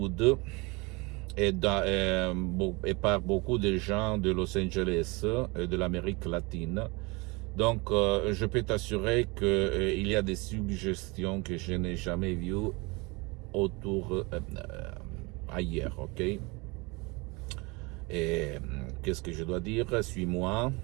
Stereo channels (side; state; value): left; quieter; 26.6 dB